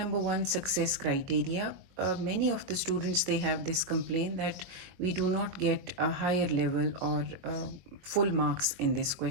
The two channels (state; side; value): late; left; 22 ms